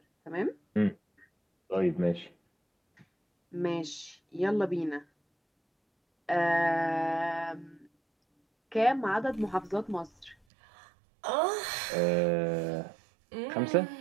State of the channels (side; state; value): left; drops out; at 10.4 s